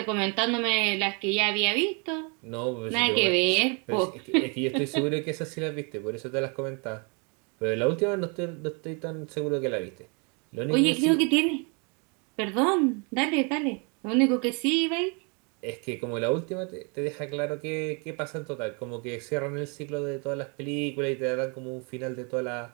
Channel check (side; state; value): left; quieter; 34.2 dB